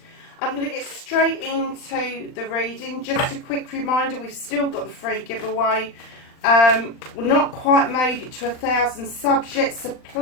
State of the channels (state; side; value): late; right; 39 ms